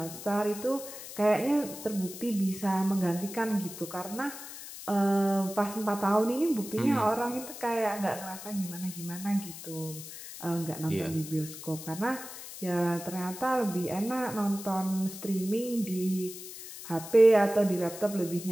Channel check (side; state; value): left; noise; hiss, 12 dB below the sound